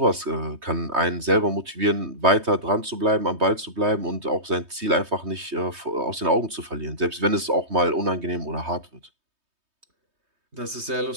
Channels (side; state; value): left; late; 3.2 ms